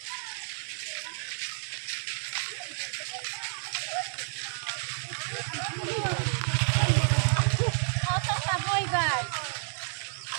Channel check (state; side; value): silent; left; 58 dB below the other